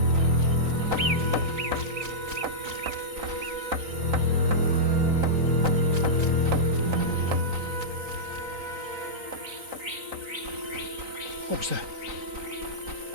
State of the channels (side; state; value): left; late; 3.9 ms